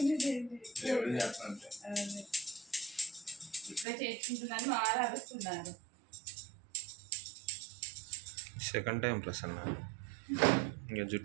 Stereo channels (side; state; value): left; drops out; at 3.9 s